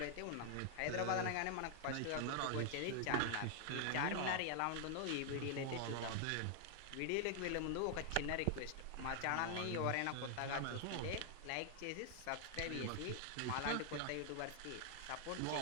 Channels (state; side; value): different; both; correlation 0.00